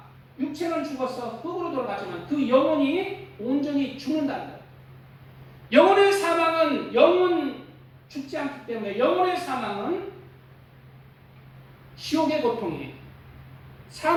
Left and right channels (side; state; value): both; identical; correlation 1.00